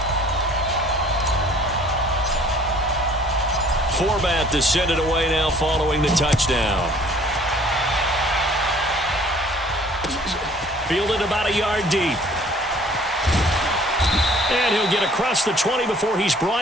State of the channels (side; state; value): both; normal; correlation 0.54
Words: Forbath to send it away now following the touchdown. Fielded about a yard deep. And he'll get across the 20 before he's